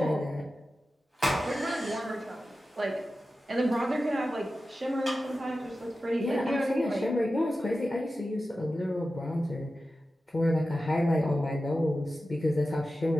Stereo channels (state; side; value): normal; both; correlation 0.93